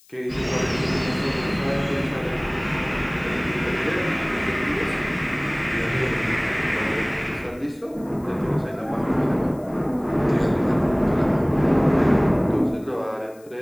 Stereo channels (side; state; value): left; noise; hiss, 28 dB below the sound